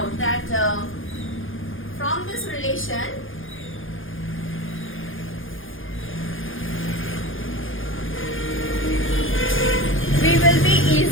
that from this relation, we will be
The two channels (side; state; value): right; late; 0.58 ms